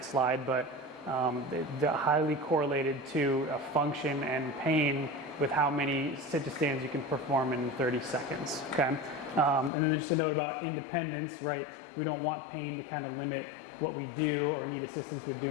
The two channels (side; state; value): right; drops out; at 9.7 s